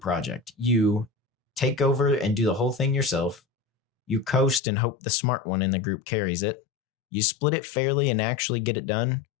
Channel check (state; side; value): drops out; right; at 4.6 s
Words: You take over and do the whole thing yourself. You coast and hope the smart one in the group carries it. You split it fairly and actually get it done,